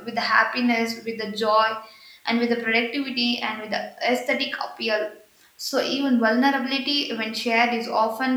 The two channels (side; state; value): both; identical; correlation 1.00